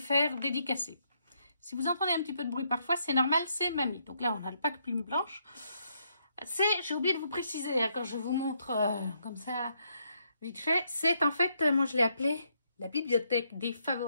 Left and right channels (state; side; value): inverted; both; correlation -0.75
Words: dédicacer. Si vous entendez un petit peu de bruit parfois, c'est normal, c'est mamie. Donc là, on a le pack plume blanche. J'ai oublié de vous préciser, hein, quand je vous montre comme ça, vite fait, c'est en fait, moi je l'ai appelé la bibliothèque des